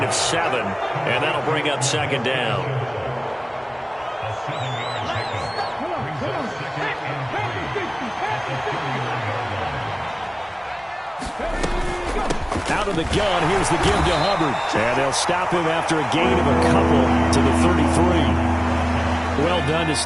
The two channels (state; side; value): identical; both; correlation 1.00